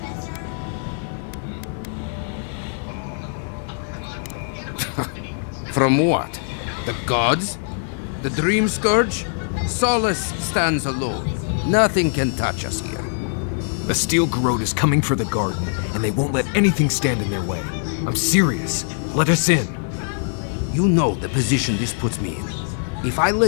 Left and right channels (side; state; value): right; silent; 64 dB below the other